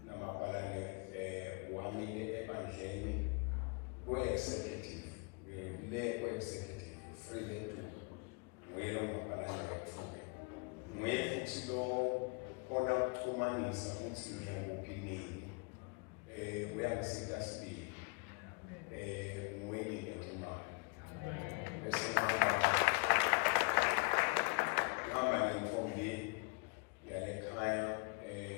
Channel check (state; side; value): quieter; right; 32.7 dB